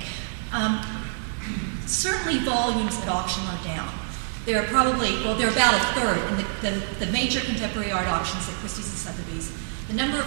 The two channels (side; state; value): left; silent; digital silence